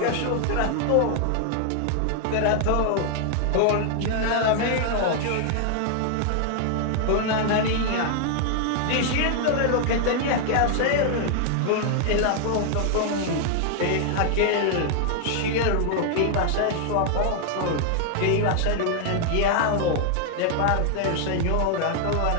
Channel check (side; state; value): both; different; correlation 0.00